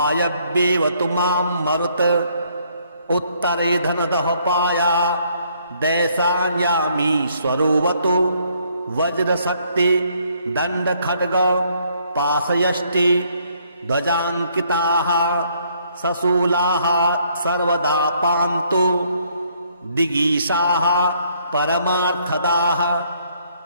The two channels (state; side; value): inverted; both; correlation -0.67